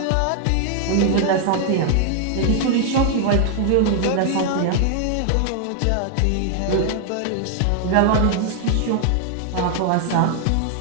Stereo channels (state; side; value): different; both; correlation 0.00